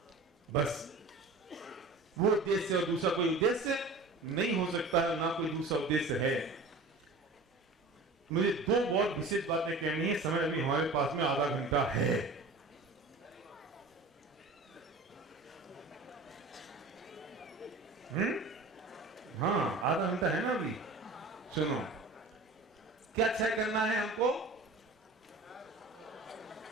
बस। वो उद्देश्य और दूसरा कोई उद्देश्य नहीं हो सकता है, ना कोई दूसरा उद्देश्य है। मुझे दो बहुत विशेष बातें कहनी है, समय अभी हमारे पास में आधा घंटा है। हाँ, आधा घंटा है ना अभी। सुनो, क्या तय करना है हमको?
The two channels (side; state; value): left; quieter; 3.3 dB